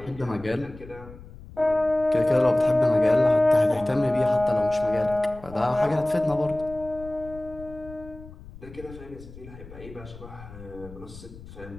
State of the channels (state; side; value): noise; left; rumble, 17 dB below the sound